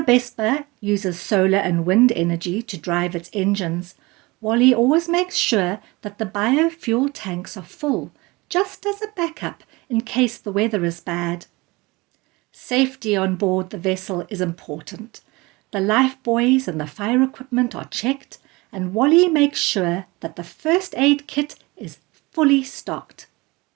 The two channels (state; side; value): quieter; left; 23.3 dB